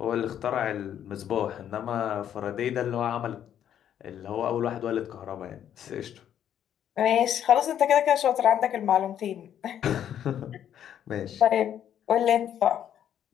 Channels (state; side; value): quieter; right; 10.0 dB